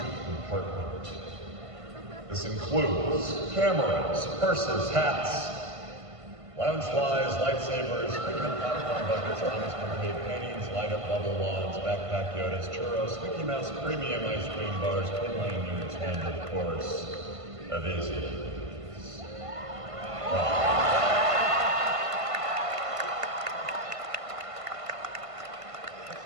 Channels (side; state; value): left; late; 1.5 ms